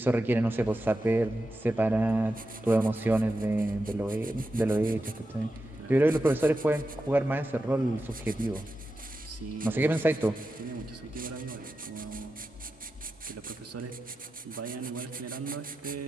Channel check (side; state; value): both; normal; correlation 0.90